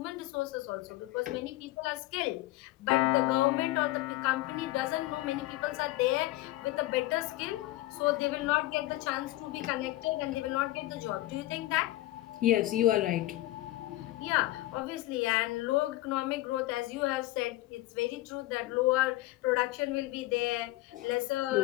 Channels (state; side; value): quieter; right; 17.4 dB